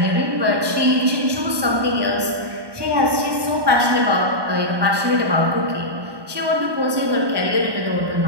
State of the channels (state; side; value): late; left; 1.2 ms